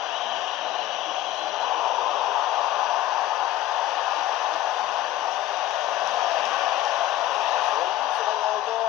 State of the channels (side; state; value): right; quieter; 14.3 dB